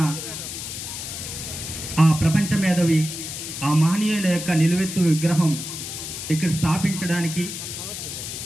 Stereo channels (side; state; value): left; noise; hiss, 7 dB below the sound